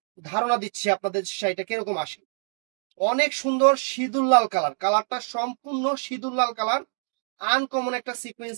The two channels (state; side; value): silent; left; 61 dB below the other